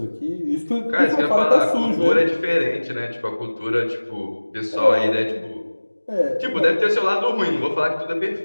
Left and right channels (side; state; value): both; inverted; correlation -1.00